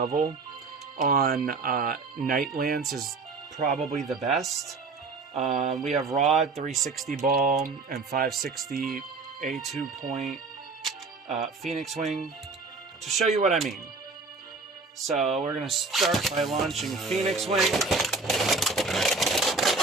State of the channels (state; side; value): quieter; left; 4.0 dB